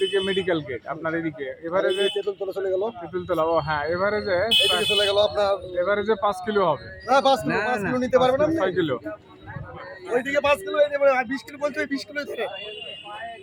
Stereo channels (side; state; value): both; identical; correlation 1.00